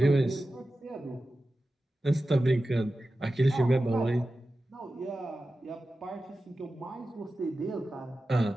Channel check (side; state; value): both; normal; correlation 0.94